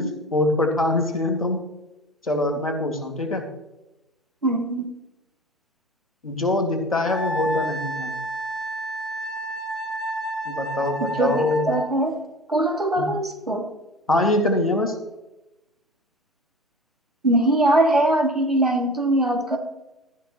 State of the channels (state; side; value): normal; both; correlation 0.38